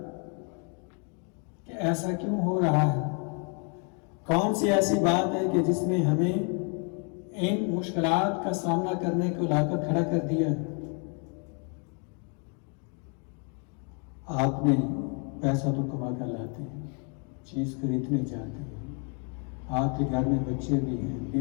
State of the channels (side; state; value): right; quieter; 38.4 dB